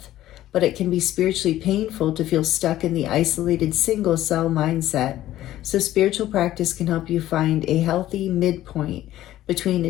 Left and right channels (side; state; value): right; quieter; 13.9 dB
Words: But it can be spiritually painful to feel stuck in the isolated single-cell mindset. So spiritual practice can help you find a healthy midpoint between